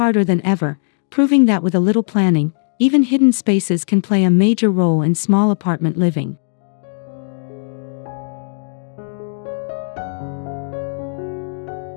than ever, proving that with a little planning, even hidden spaces can play a major role in small apartment living.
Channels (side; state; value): right; silent; digital silence